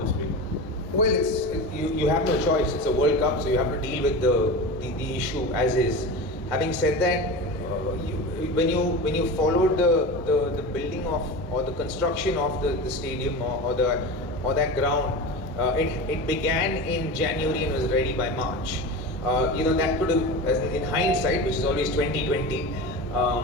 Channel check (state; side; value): normal; both; correlation 0.28